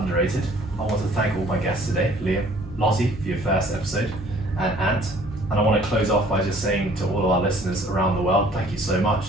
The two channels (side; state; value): left; noise; hum, 18 dB below the sound